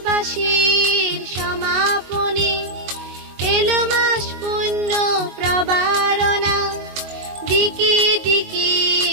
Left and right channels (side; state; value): left; late; 22 ms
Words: সমাপনে এলো মাস পুণ্য প্রবারণা, দিকে দিকে